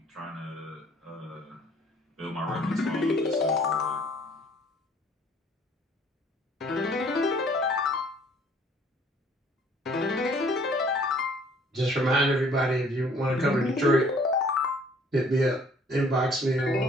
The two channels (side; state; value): both; normal; correlation 0.57